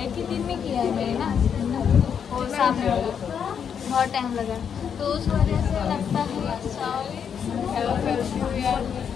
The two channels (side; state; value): right; quieter; 7.6 dB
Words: ही दिन में किया है मैंने ना, और सामने बहुत टाइम लगा, तो उस वजह से लगता है